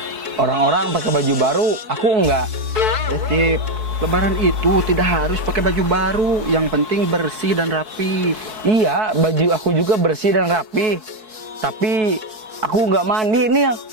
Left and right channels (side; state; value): left; late; 4.6 ms